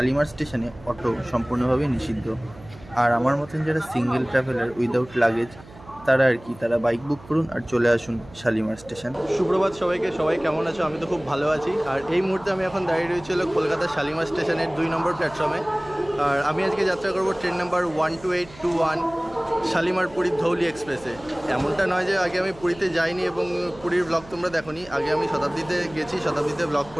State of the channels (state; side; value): noise; right; hum, 20 dB below the sound